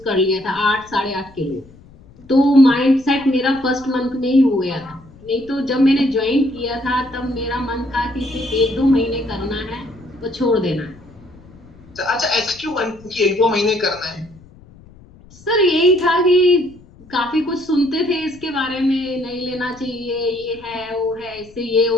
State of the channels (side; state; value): left; noise; rumble, 24 dB below the sound